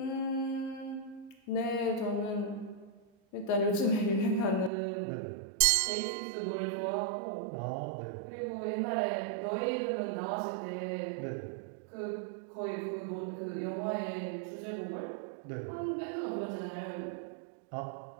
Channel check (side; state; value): left; drops out; at 4.7 s